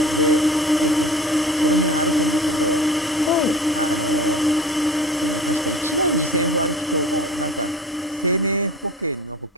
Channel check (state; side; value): normal; both; correlation 0.40